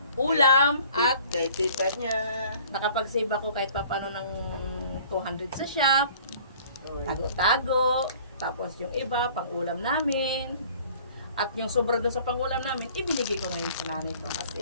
ulam at Kay tita niya. nakapag-save ako kahit papano ng 200 sa shop. Tago-tago. Tapos yung iba, pang-ulam namin. At yung sobra doon sa pang-ulam namin, ibinigay ko ngayon sa nanay ko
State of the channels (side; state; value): both; inverted; correlation -0.52